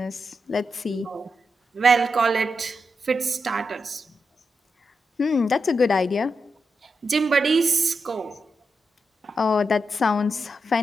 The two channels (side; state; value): both; normal; correlation 0.86